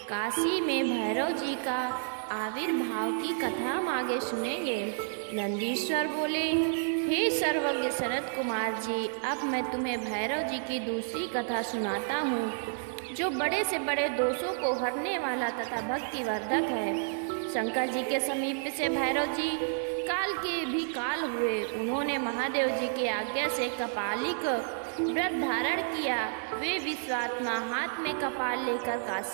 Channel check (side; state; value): left; silent; digital silence